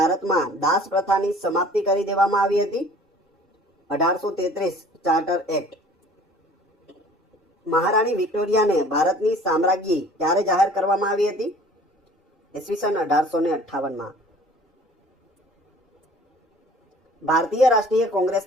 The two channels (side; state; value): both; normal; correlation 0.49